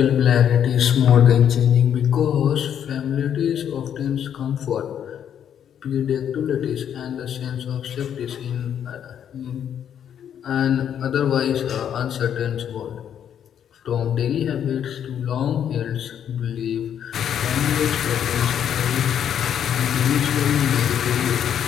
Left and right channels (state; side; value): quieter; right; 9.1 dB